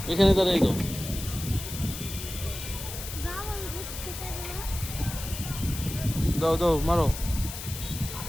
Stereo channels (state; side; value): noise; left; hiss, 9 dB below the sound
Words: এখানে দাঁড়াই দাও। বাবুল ঘুরতে থাকলো। দাও দাও মারো।